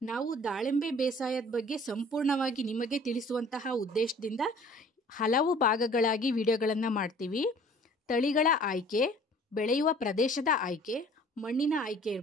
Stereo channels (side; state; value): both; normal; correlation 0.51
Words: ನಾವು ದಾಳಿಂಬೆ ಬೇಸಾಯದ ಬಗ್ಗೆ ಸಂಪೂರ್ಣವಾಗಿ ನಿಮಗೆ ತಿಳಿಸುವಂತಹ ಉದ್ದೇಶದಿಂದ ಹಲವು ಭಾಗಗಳಾಗಿ ವಿಡಿಯೋಗಳನ್ನು ಮಾಡ್ತೀವಿ. ತಳಿಗಳ ಆಯ್ಕೆ, ಬೆಳೆಯುವ ಪ್ರದೇಶದ ಆಯ್ಕೆ, ಮಣ್ಣಿನ ಆಯ್ಕೆ